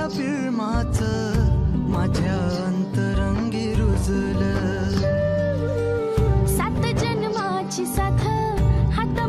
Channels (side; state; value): both; identical; correlation 1.00